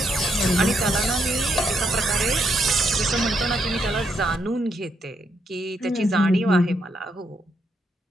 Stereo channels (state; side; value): normal; both; correlation 0.77